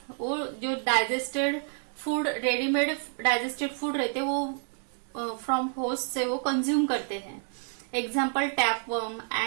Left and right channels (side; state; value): left; silent; 58 dB below the other